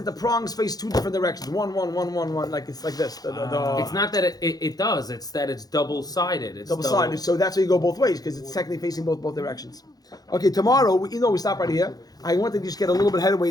the prongs face two different directions. One, like it's like this. It's not that it does. It's that it's double-sided. It's double-sided. So that's why you go both ways because it's technically facing both directions. Okay, tomorrow we stop right here. I want to just get a little bit headway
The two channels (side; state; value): right; late; 0.19 ms